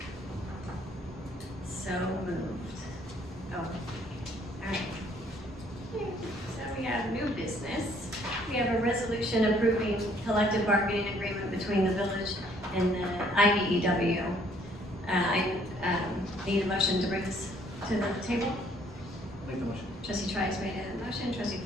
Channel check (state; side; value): normal; both; correlation 0.63